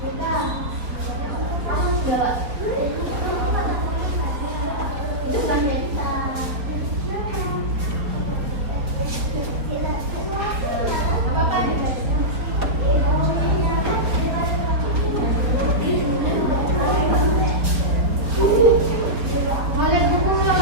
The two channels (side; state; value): left; late; 4.3 ms